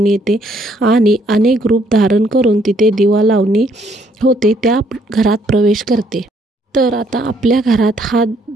येते आणि अनेक रूप धारण करून तिथे दिवा लावणी होते त्या घरात प्रवेश करते. तर आता आपल्या घरात हा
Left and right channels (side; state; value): both; normal; correlation 0.67